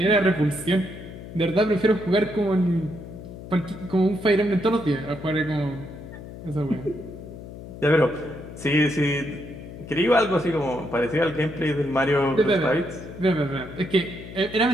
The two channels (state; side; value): noise; left; hum, 13 dB below the sound